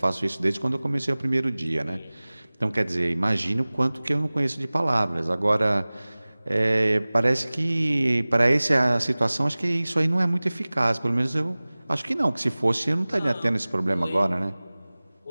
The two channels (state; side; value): inverted; both; correlation -0.99